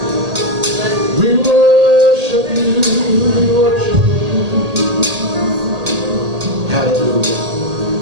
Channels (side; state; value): left; late; 1.8 ms